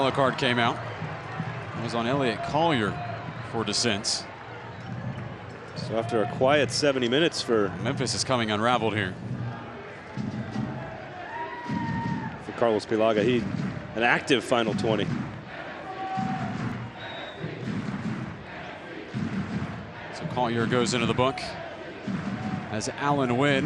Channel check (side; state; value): both; identical; correlation 1.00